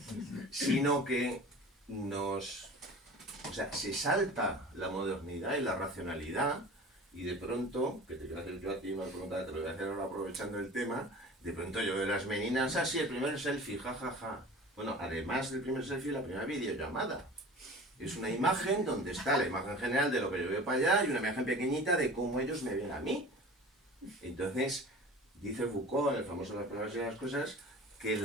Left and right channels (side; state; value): both; normal; correlation 0.39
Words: sino que o sea, se salta la modernidad y la racionalidad, y de pronto, que te voy a hacer yo a ti una pregunta, te lo voy a hacer ahora aprovechando el tema, de pronto yo veo las meninas, así el primer selfie, jajaja. Bueno, además del primer selfie, la primera videollamada. Es una imagen donde está la imagen general de lo que yo veo para allá y una imagen pequeñita de cómo ellos me ven a mí. Entonces, dice Foucault, en el famoso Las palabras y las cosas, que